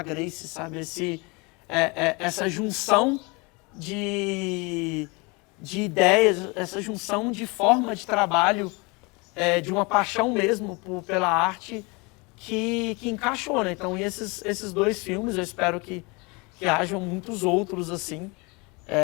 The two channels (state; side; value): quieter; right; 28.1 dB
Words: Grace, sabe, essa junção de ideias, essa junção de forma de trabalho, de uma paixão mesmo pela arte que encaixou, né? Então, esses dois filmes, eu espero que hajam muitos outros assim.